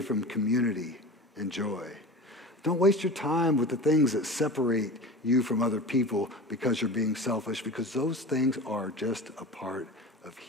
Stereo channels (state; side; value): normal; both; correlation 0.33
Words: community and joy. Don't waste your time with the things that separate you from other people because you're being selfish, because those things are just a part of